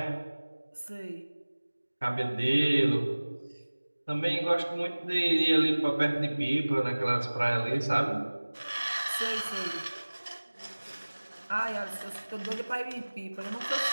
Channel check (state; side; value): inverted; both; correlation -1.00